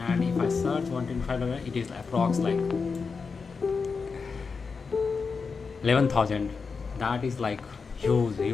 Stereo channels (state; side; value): quieter; right; 5.0 dB